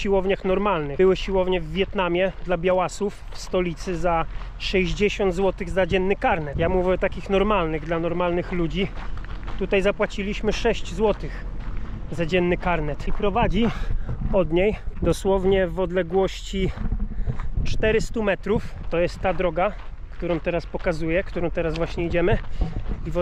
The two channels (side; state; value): both; identical; correlation 1.00